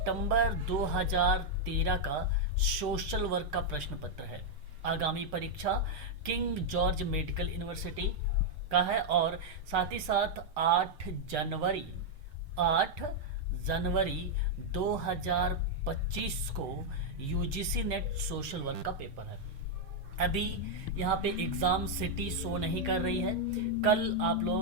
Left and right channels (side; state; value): left; late; 6.7 ms